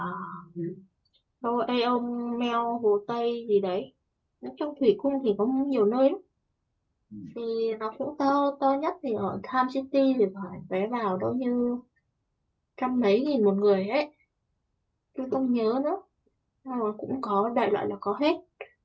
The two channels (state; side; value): identical; both; correlation 1.00